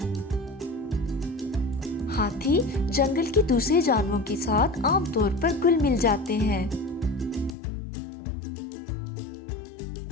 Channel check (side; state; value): right; drops out; at 7.6 s